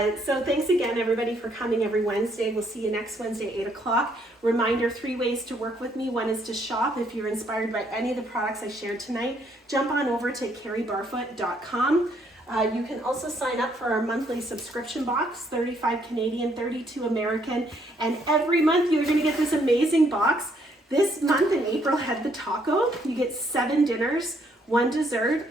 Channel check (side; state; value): both; normal; correlation 0.69